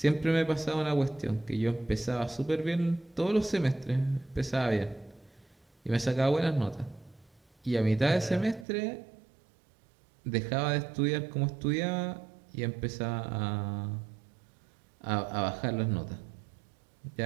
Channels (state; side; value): drops out; left; at 8.7 s